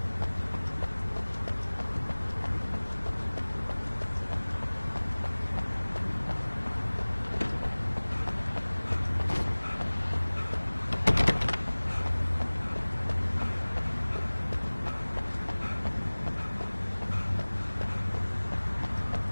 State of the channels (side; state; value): both; inverted; correlation -1.00